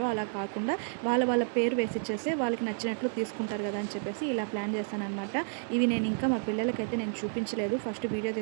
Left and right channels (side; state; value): left; silent; 57 dB below the other